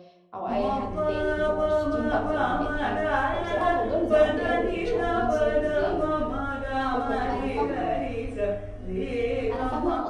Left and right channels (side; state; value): both; identical; correlation 1.00